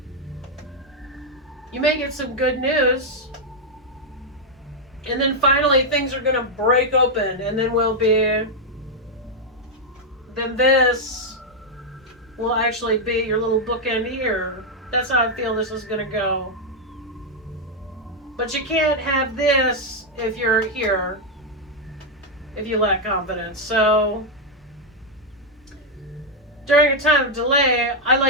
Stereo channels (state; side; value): normal; both; correlation 0.00